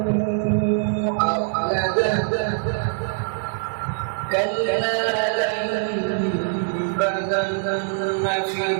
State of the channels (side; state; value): left; silent; digital silence